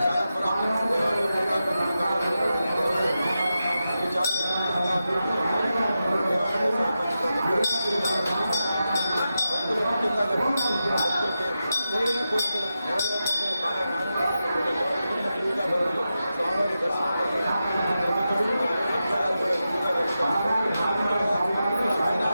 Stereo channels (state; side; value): inverted; both; correlation -0.90